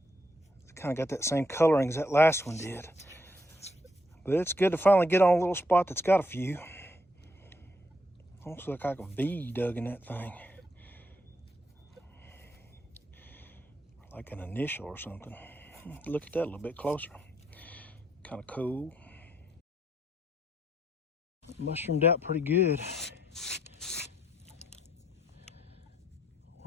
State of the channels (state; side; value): normal; both; correlation 0.74